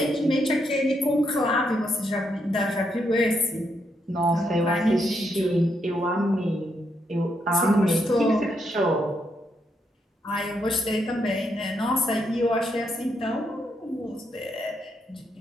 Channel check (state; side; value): normal; both; correlation 0.79